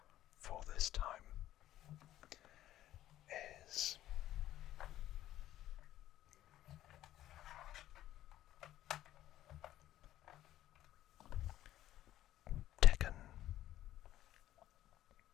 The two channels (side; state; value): right; quieter; 13.4 dB